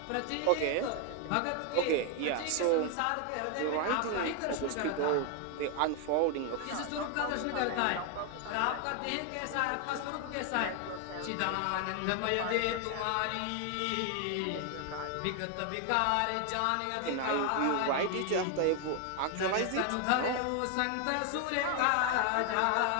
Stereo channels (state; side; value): different; both; correlation 0.00